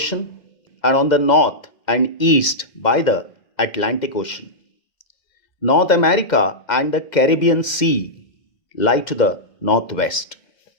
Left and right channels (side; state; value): right; late; 2.1 ms